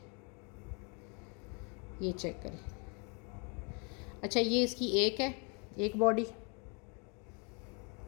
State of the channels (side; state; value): right; quieter; 34.8 dB